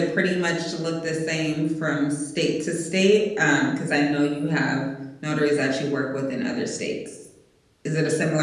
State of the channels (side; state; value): both; identical; correlation 1.00